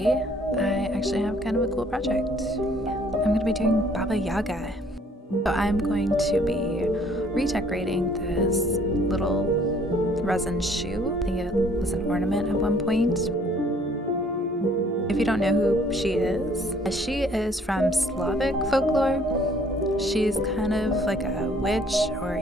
I actually have kind of a cool project. I'm going to be doing Baba Yaga. So I'm going to be redecorating this little resin shoe. I think it was an ornament at one point. If you don't know who she is from Slavic folklore. She's kind of like a witch or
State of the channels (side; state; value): both; normal; correlation 0.60